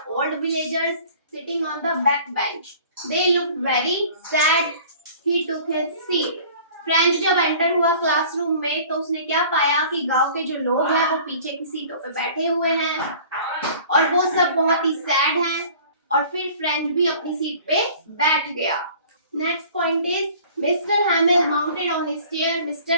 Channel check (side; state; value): both; inverted; correlation -0.48